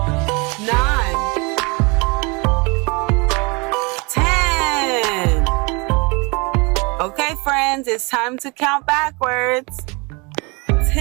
9, 10. Okay, friends, it's time to count backwards.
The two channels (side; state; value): left; quieter; 28.8 dB